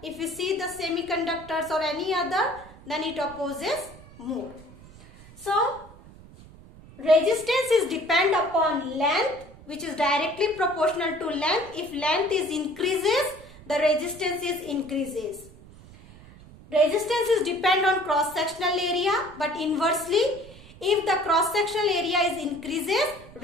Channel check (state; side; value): noise; right; rumble, 20 dB below the sound